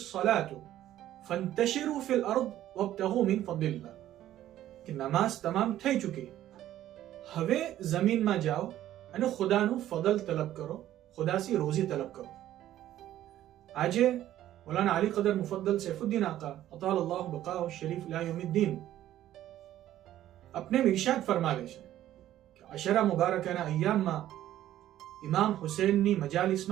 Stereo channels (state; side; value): quieter; left; 12.9 dB